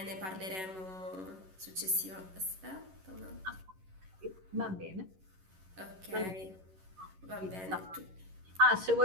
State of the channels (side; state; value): left; late; 11 ms